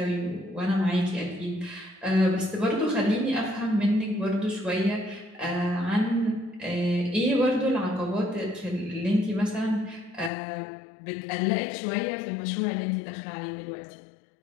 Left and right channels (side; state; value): right; drops out; at 10.3 s